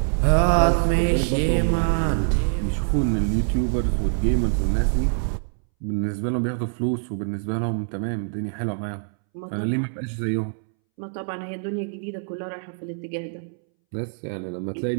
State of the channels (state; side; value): silent; left; 62 dB below the other